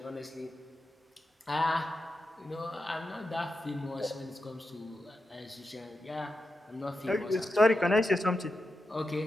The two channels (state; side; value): normal; both; correlation 0.89